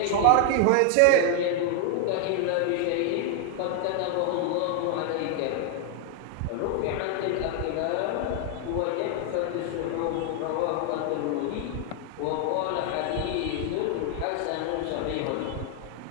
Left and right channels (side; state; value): both; different; correlation 0.00